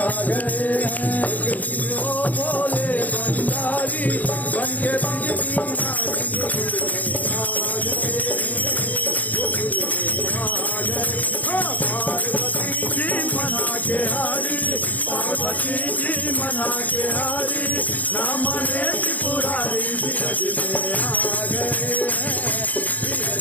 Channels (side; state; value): right; late; 0.078 ms